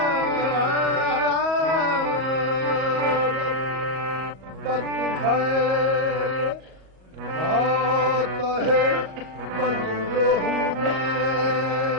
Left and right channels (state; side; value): late; left; 37 ms